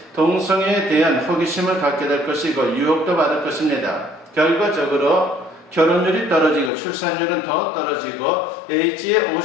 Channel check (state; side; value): drops out; right; at 6.7 s